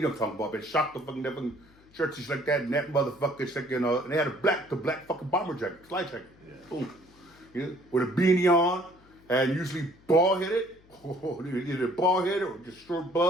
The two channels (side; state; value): left; noise; hum, 28 dB below the sound